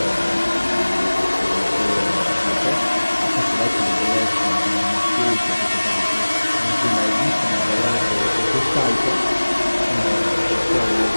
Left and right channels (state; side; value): inverted; both; correlation -1.00